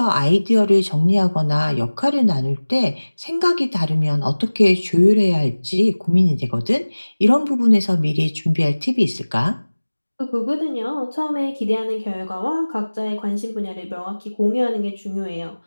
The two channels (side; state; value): both; inverted; correlation -1.00